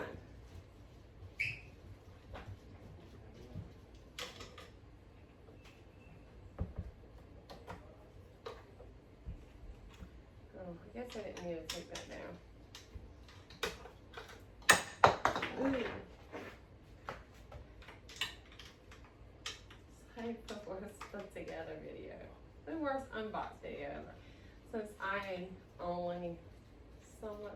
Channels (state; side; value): identical; both; correlation 1.00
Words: Oh, I guess I didn't need to take that down. Ooh. Same worst put together video. The worst unboxed video ever. Since I only